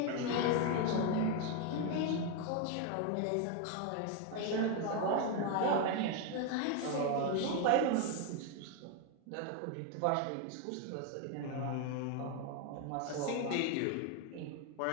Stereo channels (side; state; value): both; different; correlation 0.01